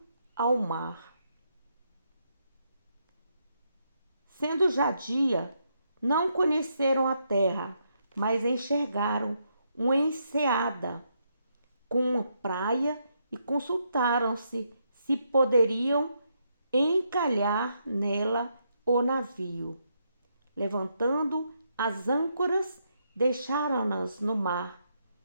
ao mar. Sendo já dia, não conheceram a terra, mas enxergaram uma enseada com uma praia e consultaram-se se poderiam encalhar nela o navio. Levantando as âncoras, deixaram-nas no mar,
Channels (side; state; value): both; inverted; correlation -0.78